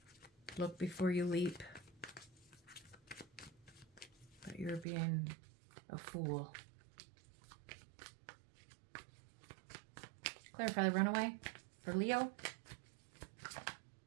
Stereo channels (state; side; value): drops out; left; at 4.9 s